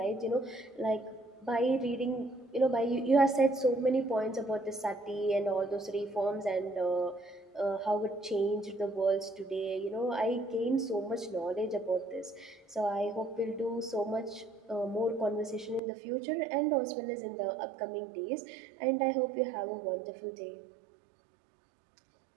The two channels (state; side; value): drops out; left; at 15.8 s